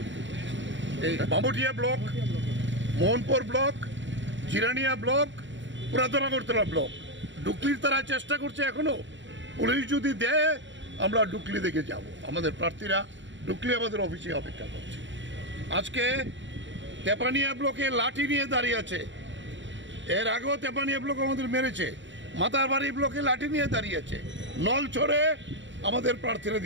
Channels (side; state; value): left; late; 0.54 ms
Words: করছি। এই Bamutia block, Mohanpur block, Jirania block, পুরাতন আগরতলা ব্লক, ডুকলির তারা চেষ্টা করছে এখনো। পুলিশ যদি দেয় আমরা ডুকলি দেখে যাব। আমাদের প্রার্থীরা ডুকলি আমাদের অফিসে অপেক্ষা করছে। আজকে তেপানিয়া ব্লকে লাঠি নিয়ে দাঁড়িয়ে আছে। এর আগেও তেপানিয়া ব্লক আমাদের মেরেছে। মাতারবাড়ি ব্লকে লাঠি নিয়ে দাঁড়িয়ে আছে। নলছড়ে আমাদের প্রার্থীরা